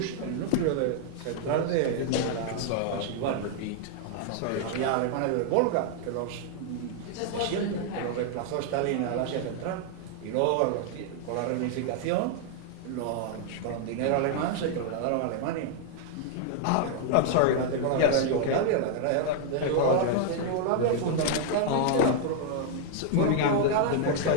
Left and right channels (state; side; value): different; both; correlation 0.00